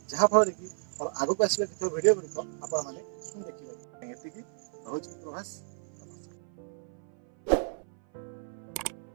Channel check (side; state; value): left; silent; 55 dB below the other